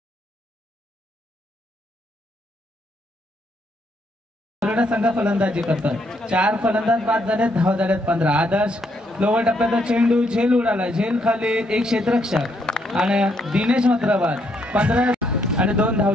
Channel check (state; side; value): normal; both; correlation 0.74